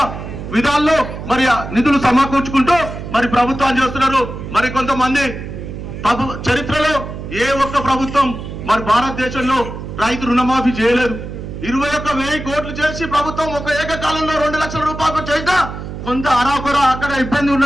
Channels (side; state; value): right; noise; hum, 9 dB below the sound